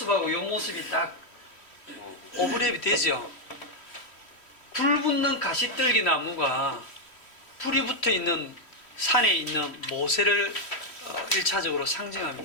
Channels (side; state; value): right; late; 3.1 ms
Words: 요 모습이 딱 오버랩이 되죠. 불 붙는 가시떨기 나무가 불이 붙어 있는 산에 있는 모세를 1차적으로